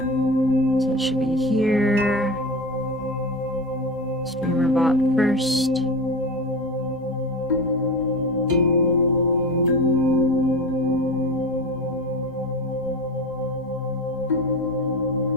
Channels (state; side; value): normal; both; correlation 0.26